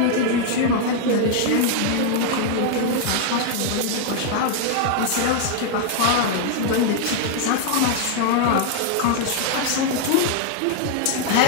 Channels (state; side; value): different; both; correlation 0.00